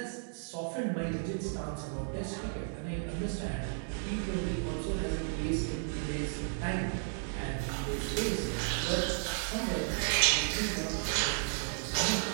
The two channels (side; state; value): left; silent; digital silence